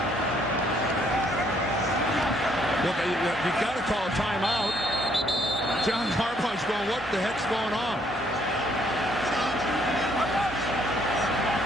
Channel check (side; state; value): left; noise; hum, 29 dB below the sound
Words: Well, you got to call a timeout. John Harbaugh's going, what the heck's going on?